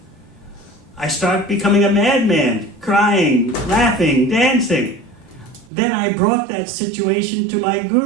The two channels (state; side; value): drops out; left; at 5.7 s